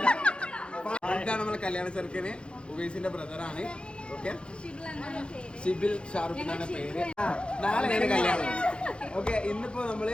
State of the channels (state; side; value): late; right; 0.056 ms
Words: ഇതാണ് നമ്മളെ കല്യാണ ചെറുക്കന് ഉവൈസിന്റെ ബ്രദറാണ്. ഓക്കെ, ഷിബിൽ ഷാറുഖ് എന്നാണ് പേര്. നാളെയാണ് കല്യാണം. ഓക്കെ, ഇന്നിപ്പോ